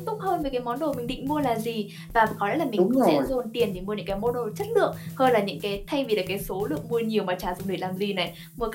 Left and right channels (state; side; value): identical; both; correlation 1.00